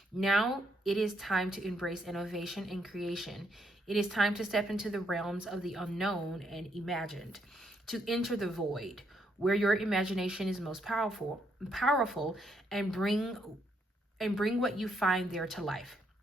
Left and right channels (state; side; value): normal; both; correlation 0.75